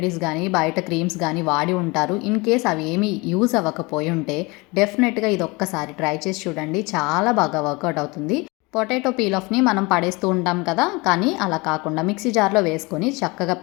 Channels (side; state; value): right; quieter; 25.3 dB